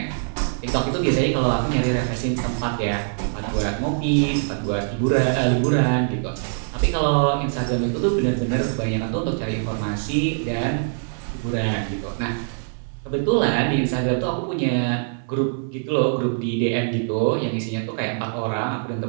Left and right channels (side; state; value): left; silent; 60 dB below the other